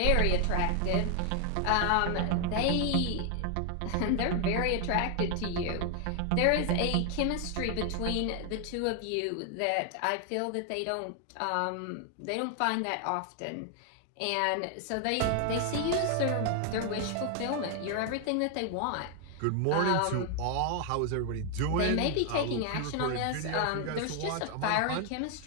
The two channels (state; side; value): different; both; correlation 0.00